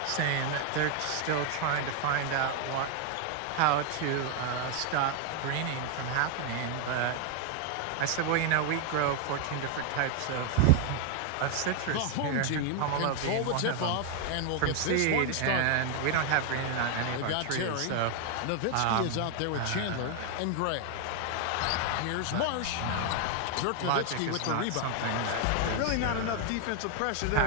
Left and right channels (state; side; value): different; both; correlation 0.00